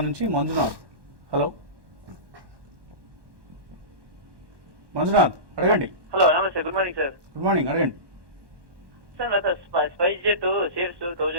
నుంచి మంజునాథ్. హలో మంజునాథ్, అడగండి. హలో నమస్తే, good morning sir. Good morning, అడగండి. సార్ నాకు స్పైస్ జెట్ షేర్స్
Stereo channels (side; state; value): left; late; 1.1 ms